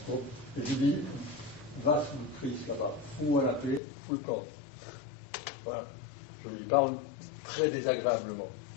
Bon. Et je dis, va sous le Christ là-bas, fous-moi la paix, fous le camp. Voilà. Je lui parle très désagréablement.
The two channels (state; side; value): drops out; right; at 3.8 s